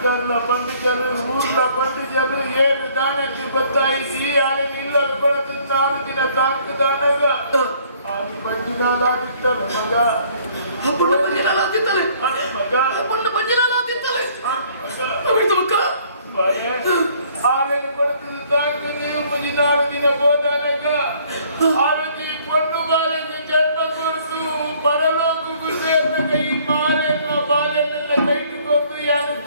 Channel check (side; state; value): both; inverted; correlation -0.60